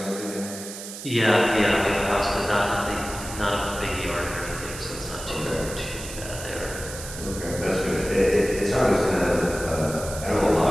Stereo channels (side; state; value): right; noise; hiss, 11 dB below the sound